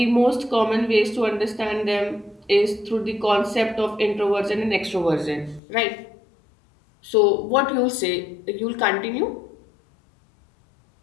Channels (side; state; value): right; drops out; at 5.6 s